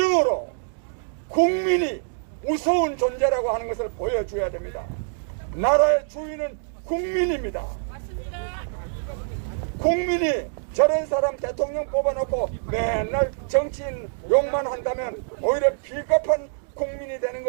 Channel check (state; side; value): silent; left; digital silence